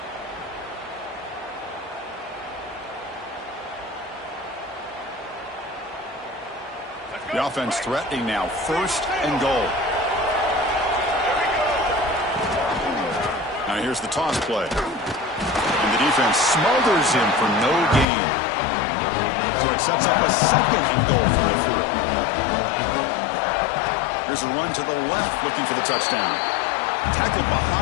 The offense threatening now. First and goal. Now here's the toss play. And the defense smothers him for no gain. So it sets up a second and goal from the 4. Here's a run to the left looking for the touchdown. Tackled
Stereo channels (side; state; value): right; drops out; at 18.1 s